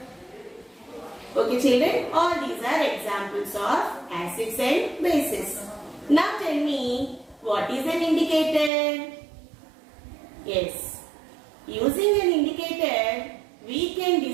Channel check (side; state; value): left; drops out; at 8.7 s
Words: Okay children, all these are examples of acids and bases. Now tell me what is an indicator? Yes, using an indicator we can